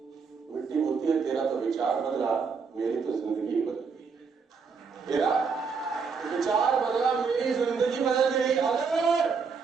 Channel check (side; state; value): left; quieter; 5.4 dB